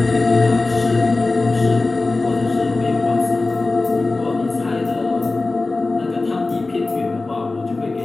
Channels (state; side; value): quieter; right; 3.4 dB